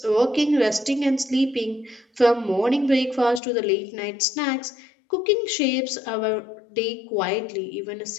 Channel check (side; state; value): right; drops out; at 3.4 s